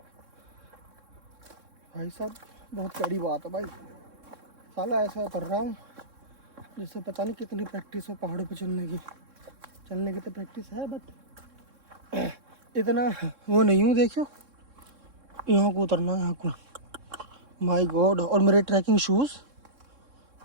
भाई साहब बहुत बड़ी बात है भाई। साला ऐसा उतर रहा हूँ जिससे पता नहीं कितनी प्रैक्टिस हो पहाड़ों पे चलने की तो प्रैक्टिस है, बट इतना वो नहीं हूँ। देखियो यहाँ को उतरना है, यहाँ को। माय गॉड, और मेरे ट्रैकिंग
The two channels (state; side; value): late; left; 3.6 ms